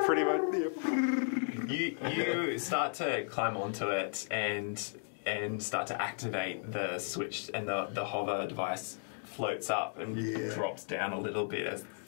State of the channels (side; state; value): right; silent; digital silence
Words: pretty much... You start to climb onto it and start to activate the switch, and the hover device floats up and drops down a little bit as the